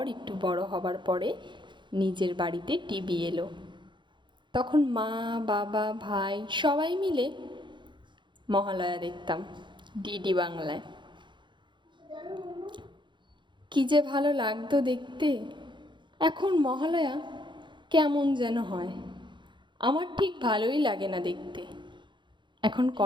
একটু বড় হবার পরে নিজের বাড়িতে টিভি এলো। তখন মা, বাবা, ভাই সবাই মিলে মহালয়া দেখতাম ডিডি বাংলায়। কি যে ভালো লাগতো দেখতে। এখন মহালয়া কেমন যেন হয়, আমার ঠিক ভালোই লাগে না দেখতে। এখন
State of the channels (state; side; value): late; left; 0.23 ms